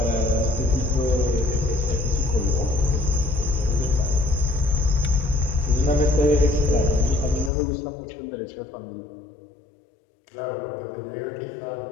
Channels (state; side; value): drops out; right; at 7.5 s